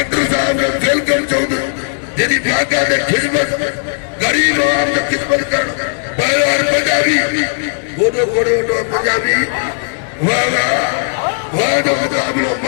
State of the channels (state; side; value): silent; right; digital silence